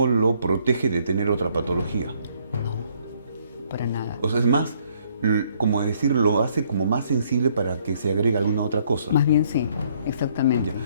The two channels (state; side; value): inverted; both; correlation -0.67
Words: lo protege de tener otra patología. No, para nada. O sea, es más, como decir, lo hace como más sensible para que se agregue alguna otra cosa. Más bien sí, exactamente.